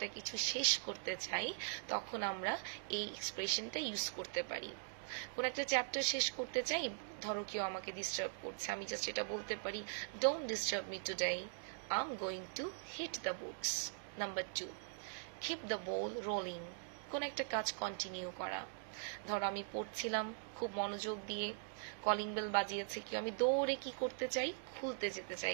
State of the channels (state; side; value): silent; left; digital silence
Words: কিছু শেষ করতে চাই, তখন আমরা এই এক্সপ্রেশনটা ইউজ করতে পারি। কোনো একটা চ্যাপ্টার শেষ করতে চাই, ধরো কেউ আমাকে ডিস্টার্ব করছে, আমি জাস্ট এটা বলতে পারি, don't disturb me today, I am going to hit the books. Number 2, keep the ball rolling. কোন একটা কাজ কন্টিনিউ করা। ধরো আমি পড়ছিলাম খুব মনোযোগ দিয়ে, কলিং বেল বাজিয়েছে, কি আমি দৌড়ে কি করতে চাই, খুলতে যেতে চাই,